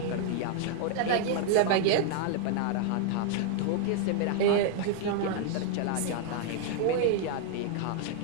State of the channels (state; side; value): different; both; correlation -0.01